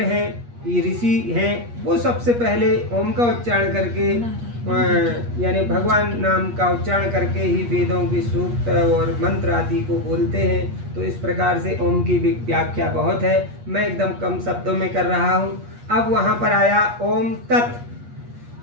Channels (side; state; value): left; late; 8.4 ms